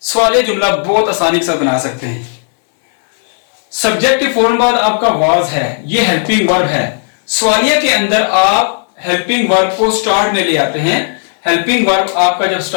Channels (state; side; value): silent; right; 72 dB below the other